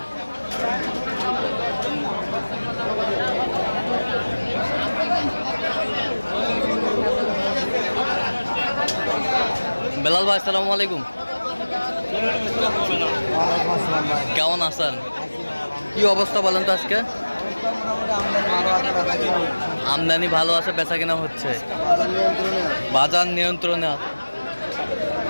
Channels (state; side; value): inverted; both; correlation -1.00